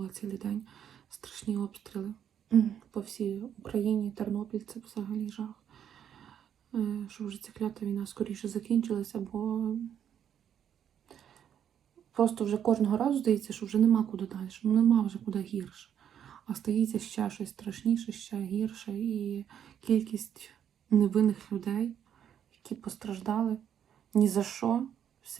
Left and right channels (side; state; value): left; quieter; 9.2 dB